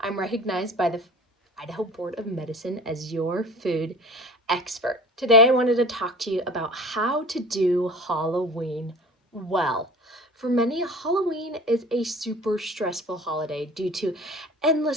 I'm recognized by the Idaho Board of Medicine as your food expert. Today I wanted to talk to you about how to do Halloween well. For many, Halloween is a super stressful holiday due to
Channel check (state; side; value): normal; both; correlation 0.41